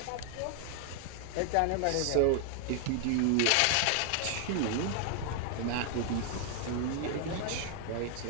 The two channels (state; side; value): different; both; correlation 0.00